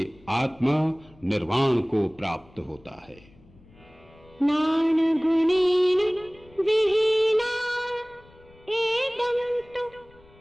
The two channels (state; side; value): noise; left; rumble, 27 dB below the sound